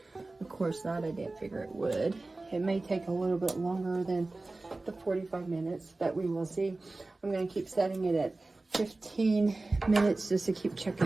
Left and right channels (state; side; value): quieter; left; 3.2 dB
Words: Of course not. I didn't figure it would. It may take a little bit longer than the 45 minutes, but we will see. I'm going to keep setting it at 15 minutes just to keep